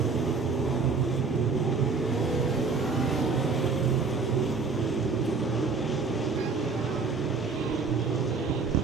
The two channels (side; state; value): left; quieter; 4.7 dB